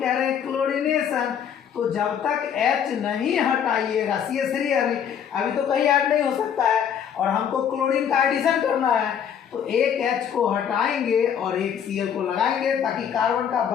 रहे हैं क्लोरीनेशन, तो जब तक H नहीं हटाइएगा, CH3 अभी तो कहीं ऐड नहीं हो सकता है और हमको क्लोरीन का एडिशन करना है, तो एक H को हटाएंगे और एक Cl को लगाएंगे ताकि कार्बन का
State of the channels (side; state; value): right; quieter; 8.4 dB